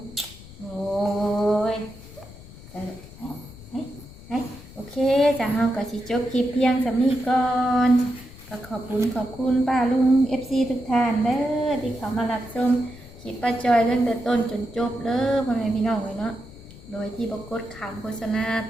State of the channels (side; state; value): left; noise; rumble, 19 dB below the sound